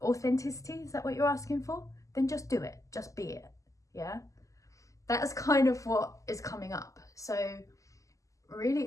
authenticity. Is that what you're asking for? Then just do it, just be it, yeah? That's kind of what is coming up. So really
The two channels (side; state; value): right; late; 0.16 ms